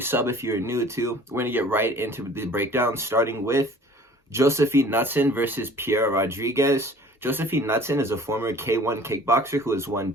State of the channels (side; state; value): both; normal; correlation 0.49